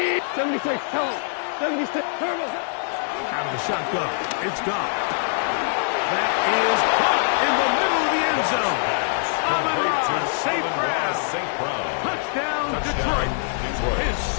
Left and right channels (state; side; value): silent; right; digital silence